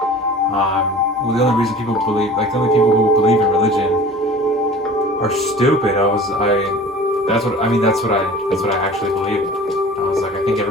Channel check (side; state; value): both; normal; correlation 0.42